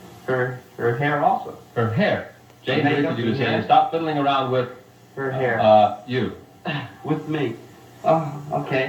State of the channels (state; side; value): identical; both; correlation 1.00